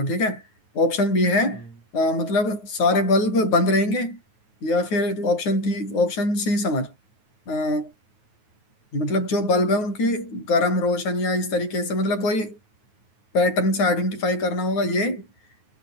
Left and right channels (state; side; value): late; right; 9.3 ms